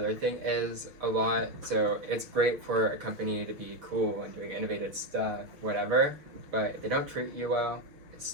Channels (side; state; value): left; late; 6.2 ms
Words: thing is a lot. So it's great for a company to be cool and doing innovative stuff, whatever. But if they don't treat you well,